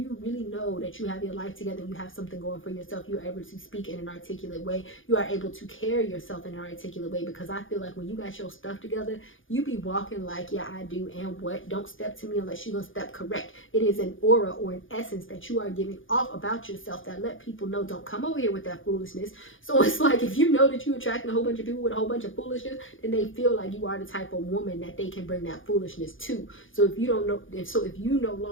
really know that you have your life together, you have something going for yourself, you're able to speak in an articulate way, you are able to carry yourself in an articulate way, because I feel like when you got your stuff together, you be walking like, yeah, I do, and what? Don't step to me unless you're gonna step correct. It is an aura or an essence that you are giving off about yourself that let people know, don't come over here with that foolishness. So it's like, if you know that you're attracting a whole bunch of people with a whole bunch of foolishness, then they feel like you are the type of woman that they can bring that foolishness to. So if you don't know, if you no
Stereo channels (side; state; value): right; late; 0.58 ms